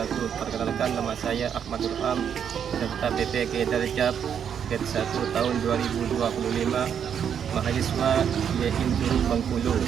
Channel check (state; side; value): quieter; left; 8.1 dB